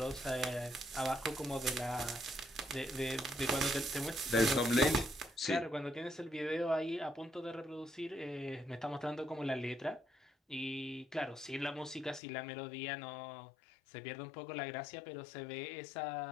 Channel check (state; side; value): drops out; right; at 12.2 s